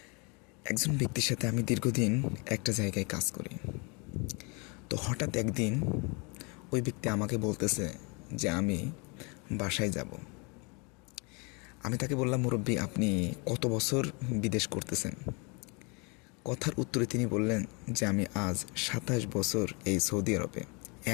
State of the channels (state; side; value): quieter; right; 31.2 dB